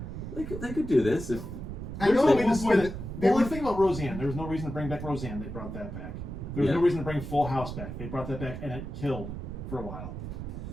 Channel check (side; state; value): right; noise; rumble, 7 dB below the sound